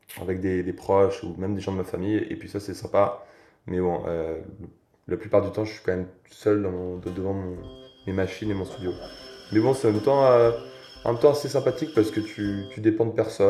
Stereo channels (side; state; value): both; identical; correlation 1.00